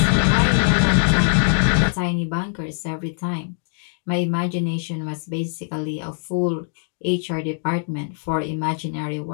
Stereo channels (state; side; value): silent; right; digital silence